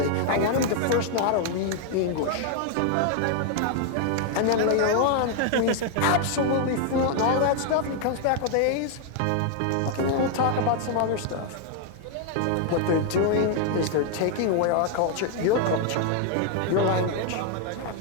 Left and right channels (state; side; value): different; both; correlation 0.00